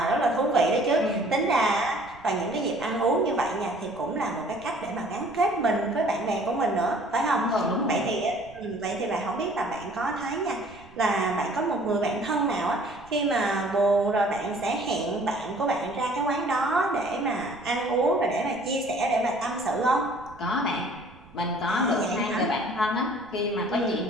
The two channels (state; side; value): noise; right; rumble, 23 dB below the sound